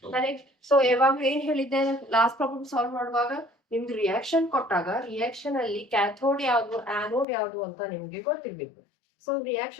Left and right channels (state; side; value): drops out; right; at 7.2 s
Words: Correct. So ಯಾವಾಗ ಏನ್ ಹೇಳಿದ್ದೆ last problem solve ಮಾಡುವಾಗ ನಿಮ್ದು ರಿಯಾಕ್ಷನ್ ಕೊಟ್ಟಾಗ ರಿಯಾಕ್ಷನ್ ಅಲ್ಲಿ ಕ್ಯಾಥೋಡ್ ಯಾವ್ದು ಆನೋಡ್ ಯಾವ್ದು ಅಂತ ನಿಮ್ಗೆ ಗೊತ್ತಿರ್ಬೇಕು. ಸೊ